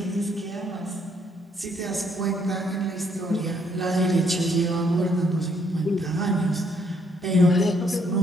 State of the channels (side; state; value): both; normal; correlation 0.70